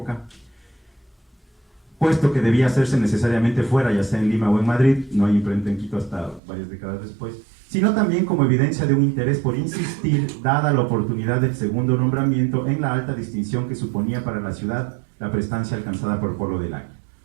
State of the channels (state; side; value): drops out; left; at 6.4 s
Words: puesto que debía hacerse necesariamente fuera, ya sea en Lima o en Madrid, no hay imprenta en Quito hasta varias décadas después, sino también como evidencia de un interés por insistir, dada la oportunidad del segundo nombramiento, en la alta distinción que suponía para la ciudad la prestancia alcanzada por Polo del Águila.